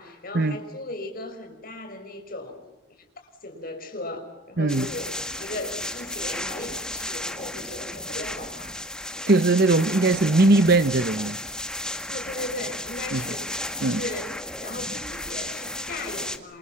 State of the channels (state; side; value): normal; both; correlation 0.46